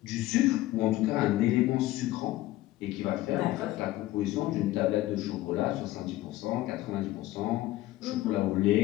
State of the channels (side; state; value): right; quieter; 16.2 dB